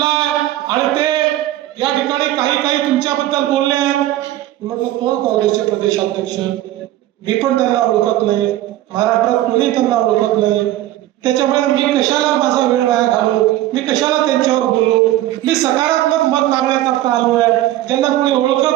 आहे आणि ते या ठिकाणी काही तुमच्याबद्दल बोलले आहेत। म्हटलं कोण काँग्रेसचे प्रदेशाध्यक्ष? मी पण त्यांना ओळखत नाही, महाराष्ट्रात कोणी त्यांना ओळखत नाही, त्याच्यामुळे मी कशाला माझा वेळ वाया घालू, मी कशाला त्यांच्यावर बोलू। मी सकारात्मक मत मागण्याकरता आलो आहे, ज्यांना कोणी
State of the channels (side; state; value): left; quieter; 14.6 dB